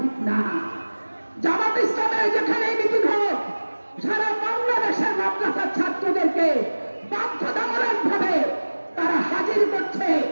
না। জামাত ইসলামের যেখানে মিটিং হোক, সারা বাংলাদেশের মাদ্রাসার ছাত্রদেরকে বাধ্যতামূলক ভাবে তারা হাজির করছে,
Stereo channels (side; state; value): both; inverted; correlation -1.00